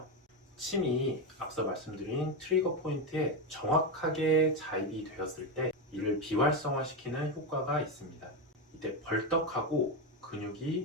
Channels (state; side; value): normal; both; correlation 0.11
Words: 침이 앞서 말씀드린 트리거 포인트에 정확하게 자입이 되었을 때 이를 비활성화시키는 효과가 있습니다. 이때 벌떡하고